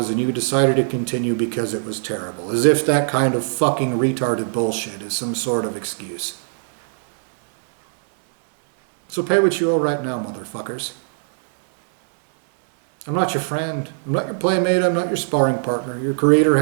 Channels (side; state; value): left; silent; digital silence